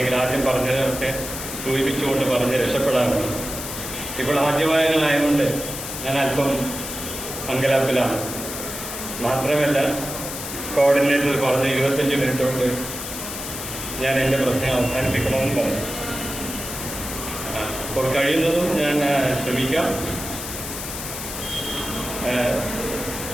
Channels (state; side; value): noise; left; hiss, 7 dB below the sound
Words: ആദ്യം പറഞ്ഞതൊക്കെ സൂചിപ്പിച്ചുകൊണ്ട് പറഞ്ഞ് രക്ഷപ്പെടാറുണ്ട്. ഇപ്പോൾ ആദ്യവായനമായതുകൊണ്ട് ഞാൻ അല്പം അങ്കലാപ്പിലാണ്. മാത്രമല്ല കോർഡിനേറ്റർ പറഞ്ഞ് 25 മിനിറ്റ് കൊണ്ട് ഞാൻ എൻ്റെ പ്രശ്നം അവസാനിപ്പിക്കണമെന്ന് പറഞ്ഞു. അപ്പോൾ കഴിയുന്നതും ഞാൻ ശ്രമിക്കാം.